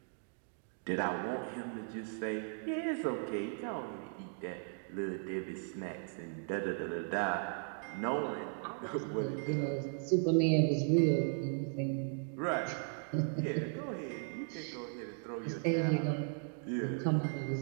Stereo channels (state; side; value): silent; left; 53 dB below the other